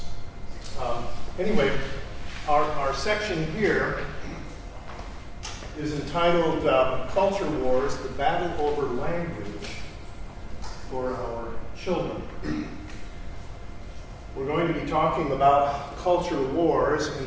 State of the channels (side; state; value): both; identical; correlation 1.00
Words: Anyway, our section here is entitled Culture Wars, the Battle Over Language for Our Children. We're going to be talking about culture wars